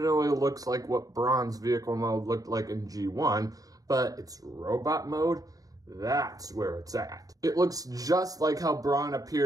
looks like what Braun's vehicle mode looked like in G1, but its robot mode, that's where it's at. It looks just like how Braun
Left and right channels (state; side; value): late; left; 0.18 ms